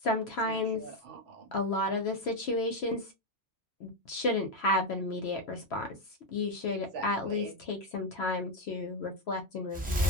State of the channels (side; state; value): both; normal; correlation 0.06